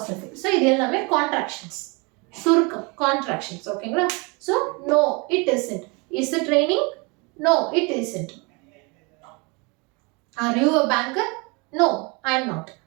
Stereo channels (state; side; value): quieter; left; 29.5 dB